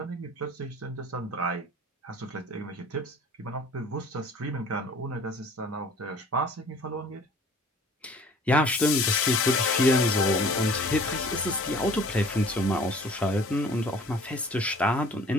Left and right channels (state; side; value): normal; both; correlation 0.49